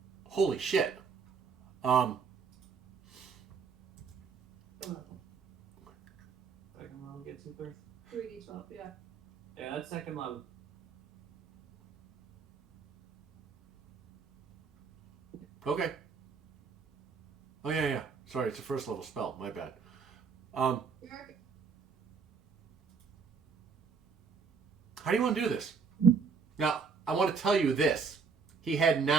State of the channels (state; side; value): quieter; left; 5.4 dB